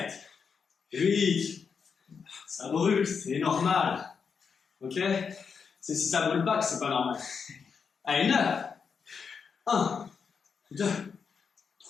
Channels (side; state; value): right; quieter; 6.0 dB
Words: 8. Ça brûle, c'est normal. Ok? C'est si ça brûle pas que c'est pas normal. Allez, 9. 1, 2,